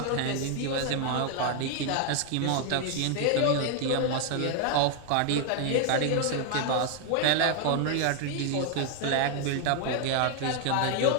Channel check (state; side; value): different; both; correlation 0.00